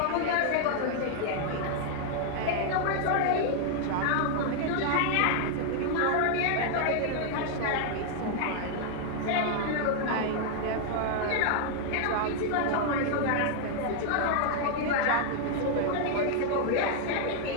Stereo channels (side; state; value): both; different; correlation 0.00